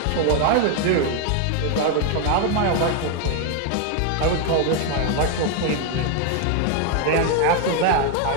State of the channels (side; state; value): both; different; correlation 0.01